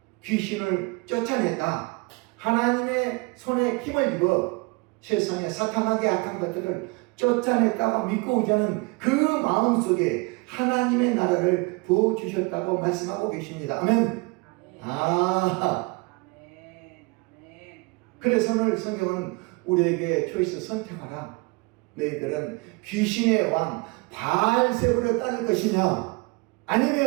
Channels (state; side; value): quieter; left; 27.2 dB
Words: 귀신을 쫓아냈다. 하나님의 손에 힘을 입어 세상에 사탄하게 악한 것들을 쫓아냈다고 믿고 오자는 그 마음속에 하나님의 나라를 부어주셨다고 말씀하고 계십니다. 아멘. 그래서 오늘 성경은 우리에게 초이스 선택하라. 너희들은 귀신의 왕 바알세불을 따를 것이냐,